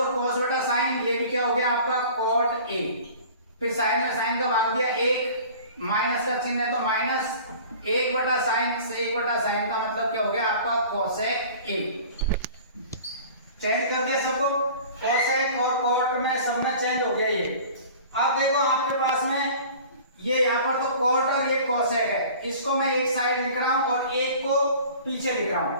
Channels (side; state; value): both; inverted; correlation -0.44